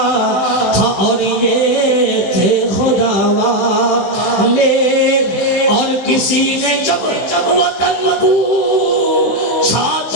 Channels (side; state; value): right; late; 15 ms